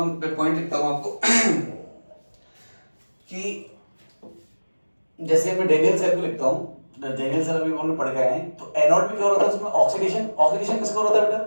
पॉइंट लिखता हूं आपको कि जैसे मैं डेनियल सेल को लिखता हूं, डेनियल सेल अभी हमने पढ़ के आए हैं, तो एनोड में क्या हो रहा था, उसमें ऑक्सीडेशन, ऑक्सीडेशन किसका हो रहा था बेटा,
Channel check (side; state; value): both; inverted; correlation -1.00